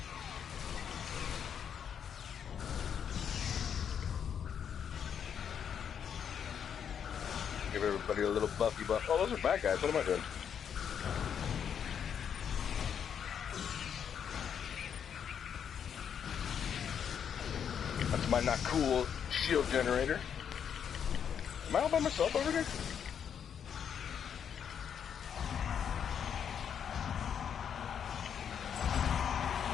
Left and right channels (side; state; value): right; quieter; 8.0 dB